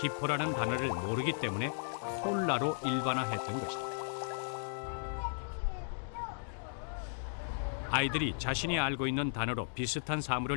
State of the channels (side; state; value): right; silent; digital silence